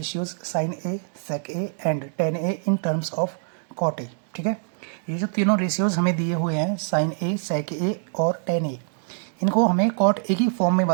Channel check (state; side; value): silent; left; digital silence